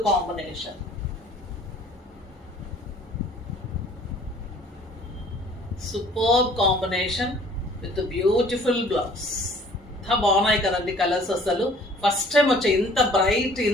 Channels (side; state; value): both; normal; correlation 0.53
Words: combination. Superb combination with beautiful blouse. ఎంత బాగున్నాయి కదండి కలర్స్. అసలు ఫస్ట్ టైం వచ్చాయి ఇంత బ్రైట్,